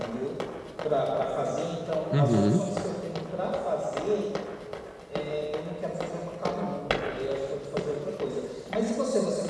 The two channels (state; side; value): identical; both; correlation 1.00